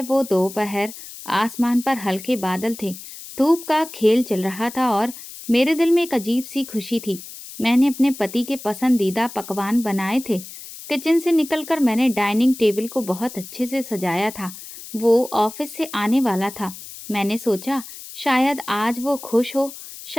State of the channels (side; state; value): left; noise; hiss, 14 dB below the sound